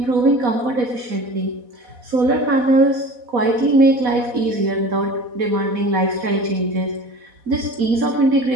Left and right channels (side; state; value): left; late; 4.1 ms